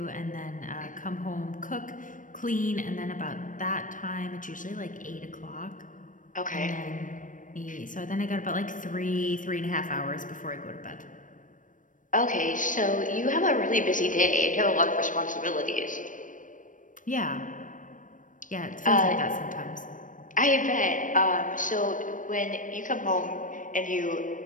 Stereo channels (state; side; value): late; right; 0.38 ms